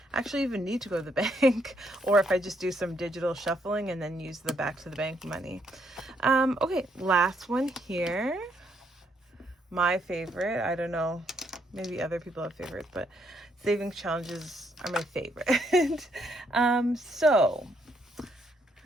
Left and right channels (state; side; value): normal; both; correlation 0.73